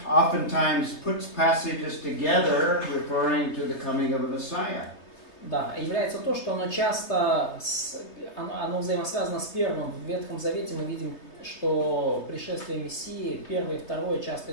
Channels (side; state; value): right; late; 3.3 ms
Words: oftentimes puts passages together referring to the coming of a Messiah. Да, является то, что оно часто оно взаимосвязано с первым. В Ветхом Завете мы видим, что пришествие Мессии, первое и второе, часто